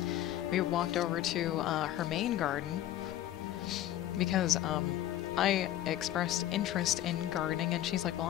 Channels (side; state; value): right; quieter; 13.0 dB